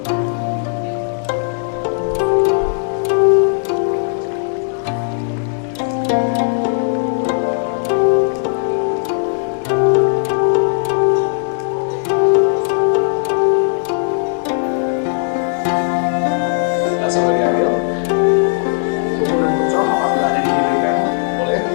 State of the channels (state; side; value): silent; right; digital silence